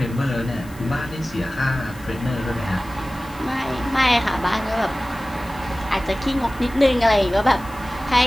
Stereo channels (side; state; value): left; noise; hiss, 22 dB below the sound